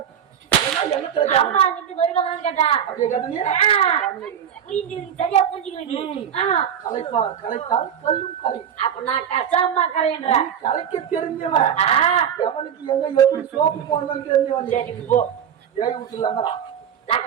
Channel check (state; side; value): quieter; left; 8.7 dB